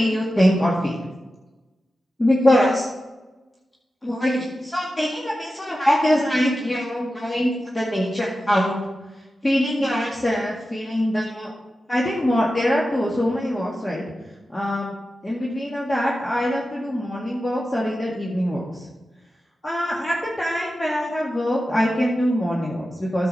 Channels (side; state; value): both; normal; correlation 0.92